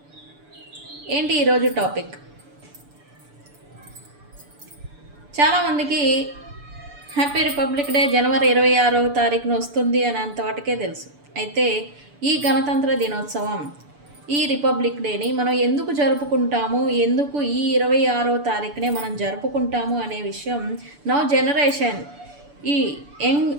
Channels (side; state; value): left; late; 6.9 ms